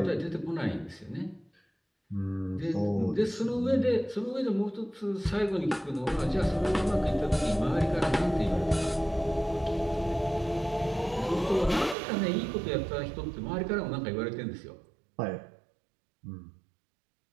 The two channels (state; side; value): drops out; left; at 12.0 s